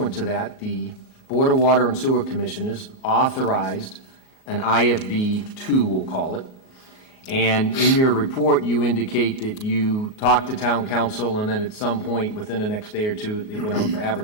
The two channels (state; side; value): late; right; 38 ms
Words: to that, the Board of Water and Sewer Commissioners authorized an IFB 2, we'll call it. And in your report, you indicate that you talked to town council, and then at some point within the next day or two, it went out for